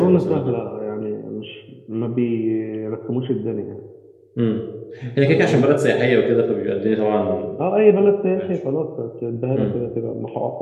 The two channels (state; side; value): identical; both; correlation 1.00